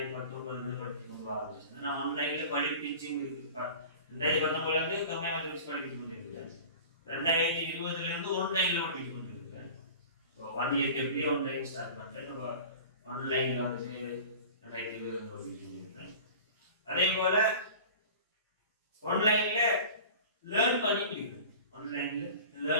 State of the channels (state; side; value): inverted; both; correlation -0.39